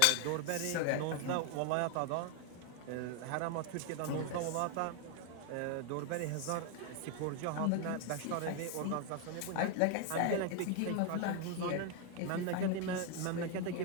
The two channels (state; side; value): different; both; correlation 0.01